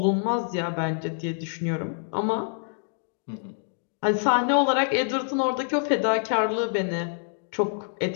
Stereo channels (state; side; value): silent; right; digital silence